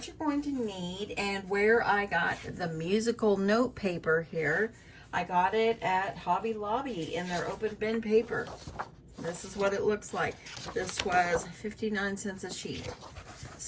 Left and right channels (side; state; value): both; identical; correlation 1.00